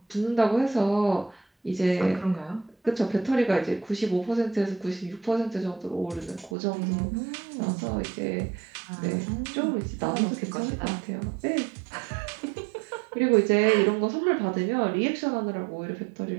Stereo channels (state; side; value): drops out; left; at 6.6 s